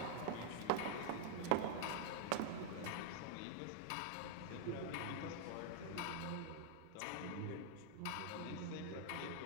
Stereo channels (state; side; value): different; both; correlation 0.00